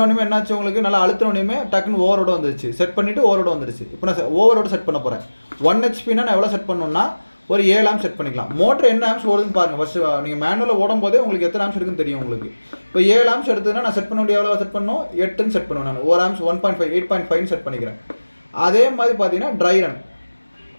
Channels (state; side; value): inverted; both; correlation -1.00